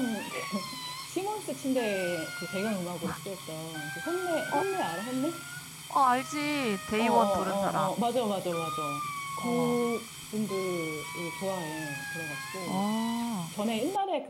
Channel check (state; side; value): identical; both; correlation 1.00